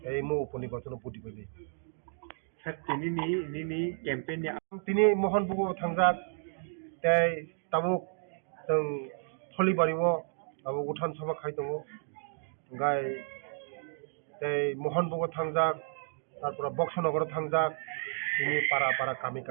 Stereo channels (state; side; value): silent; left; digital silence